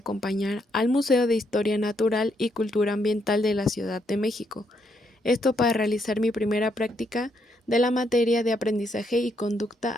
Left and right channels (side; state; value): both; normal; correlation 0.75